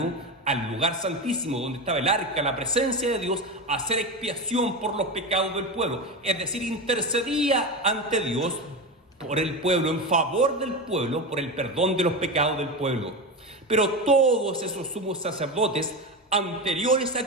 al lugar santísimo, donde estaba el arca, la presencia de Dios, a hacer expiación por los pecados del pueblo. Es decir, intercedía ante Dios por el pueblo, en favor del pueblo, por el perdón de los pecados del pueblo. Pero todos esos sumos sacerdotes anteriores a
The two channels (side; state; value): both; normal; correlation 0.20